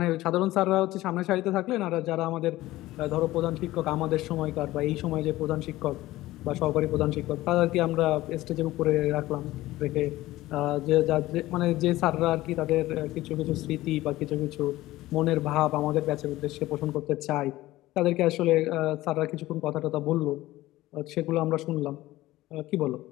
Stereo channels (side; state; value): right; quieter; 17.0 dB